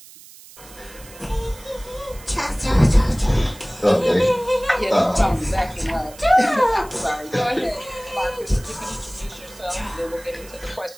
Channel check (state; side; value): noise; right; hiss, 20 dB below the sound